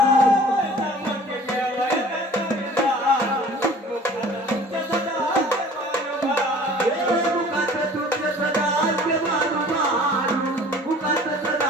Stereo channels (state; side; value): normal; both; correlation 0.47